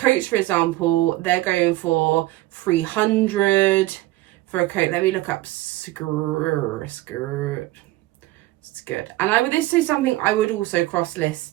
for example, they're going for 300 for a coat. Let me look up skirt. It's good. And this is something I would also cross list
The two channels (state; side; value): quieter; left; 18.0 dB